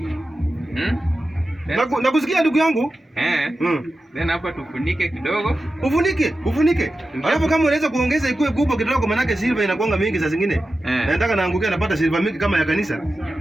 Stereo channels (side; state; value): both; normal; correlation 0.93